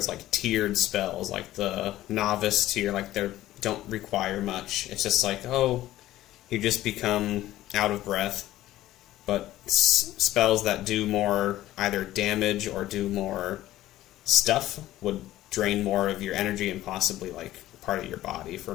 like tiered spells, like the novice tier, like they don't require much. It's just like, oh, you just become out of breath. But spells that do more either damage or do more stuff would drain more of your energy and possibly like part of your body for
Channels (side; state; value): right; quieter; 14.9 dB